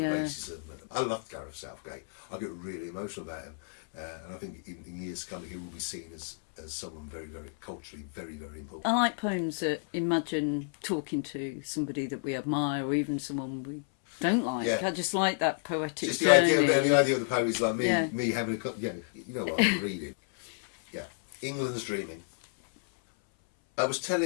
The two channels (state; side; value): silent; right; 57 dB below the other